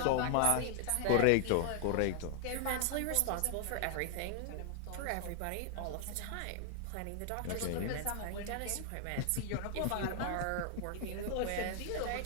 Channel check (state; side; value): different; both; correlation 0.00